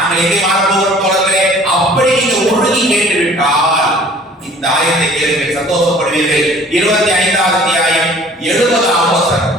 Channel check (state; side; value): normal; both; correlation 0.51